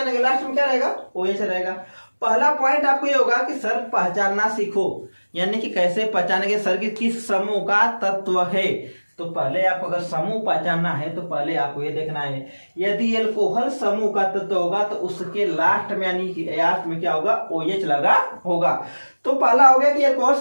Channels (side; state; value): both; inverted; correlation -1.00